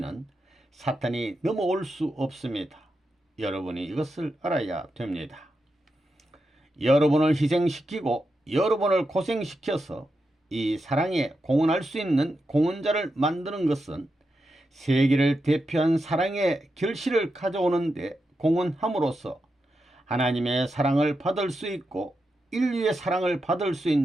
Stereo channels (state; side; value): normal; both; correlation 0.87